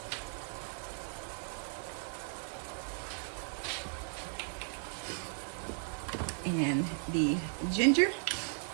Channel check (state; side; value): silent; left; digital silence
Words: And the ginger.